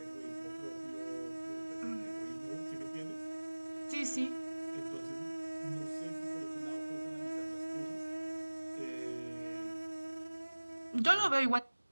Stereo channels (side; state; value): both; inverted; correlation -1.00